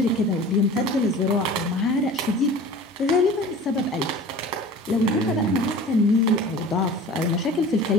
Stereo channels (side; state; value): both; normal; correlation 0.41